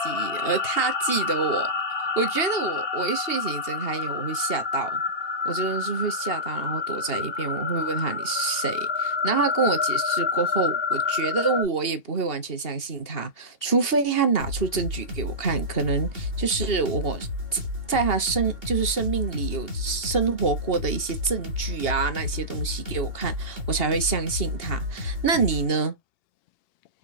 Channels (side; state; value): right; late; 2.8 ms